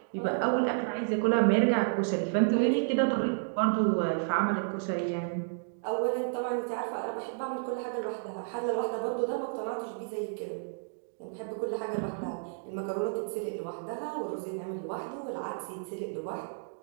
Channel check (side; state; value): left; silent; digital silence